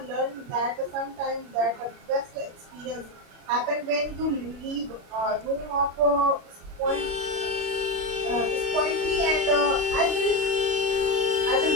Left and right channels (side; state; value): left; late; 36 ms